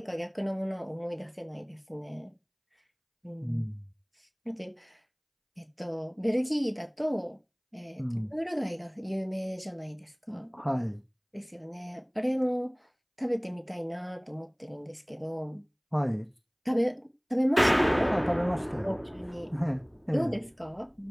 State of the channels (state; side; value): identical; both; correlation 1.00